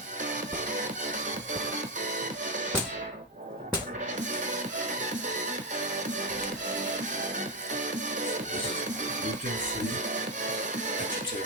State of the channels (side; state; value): both; normal; correlation 0.09